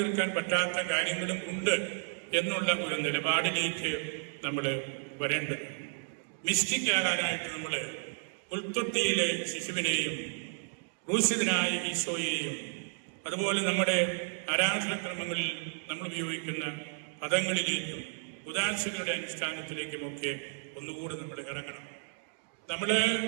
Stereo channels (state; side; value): silent; left; digital silence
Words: പറ്റാത്ത കാര്യങ്ങളും ഉണ്ട് എന്നുള്ള ഒരു നിലപാടിലേക്ക് നമ്മൾ വരേണ്ടത്. മിസ്റ്റിക് ആകാനായിട്ട് നമ്മൾ പുൽത്തൊട്ടിയിലെ ശിശുവിനെയും ക്രൂശിതനായ ഈശോയെയും അതുപോലെ നമ്മുടെ ആരാധനക്രമങ്ങളിൽ നമ്മൾ ഉപയോഗിക്കുന്ന പദങ്ങളിലേക്കും ഉദാശകളുടെ അനുഷ്ഠാനത്തിലേക്കുമൊക്കെ ഒന്നുകൂടി നമ്മൾ ഇറങ്ങണം. നമ്മൾ